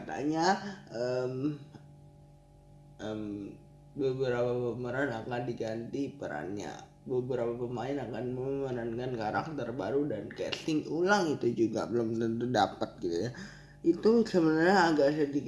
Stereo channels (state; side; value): identical; both; correlation 1.00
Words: beberapa pemeran akan diganti perannya, beberapa pemain akan memerankan karakter baru, dan casting ulang itu juga belum tentu dapat gitu ya. Itu sebenarnya agak